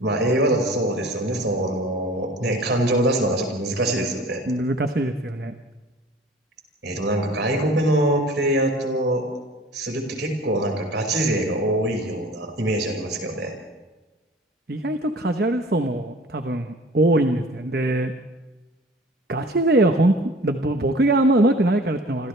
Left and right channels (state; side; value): normal; both; correlation 0.45